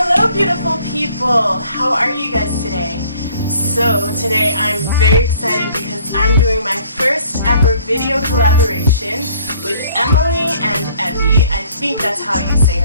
Hello beautiful people, how are you guys today? So today I'm very excited because I'm doing my first ever video collaboration with Emily and Evie. I think that's how you say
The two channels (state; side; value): inverted; both; correlation -0.57